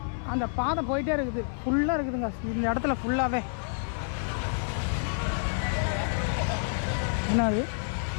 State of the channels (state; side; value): silent; right; 59 dB below the other